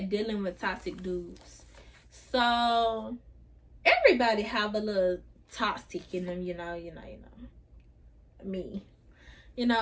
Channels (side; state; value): both; identical; correlation 1.00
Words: dealing with toxic dudes. So everybody have a little toxic in them, you know. Me.